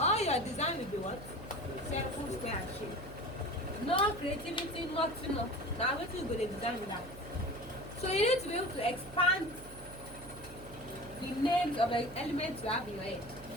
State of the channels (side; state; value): right; noise; hum, 16 dB below the sound